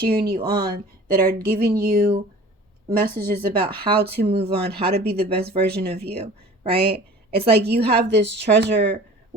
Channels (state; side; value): normal; both; correlation 0.44